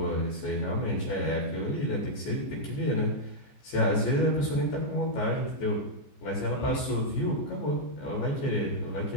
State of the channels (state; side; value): late; right; 14 ms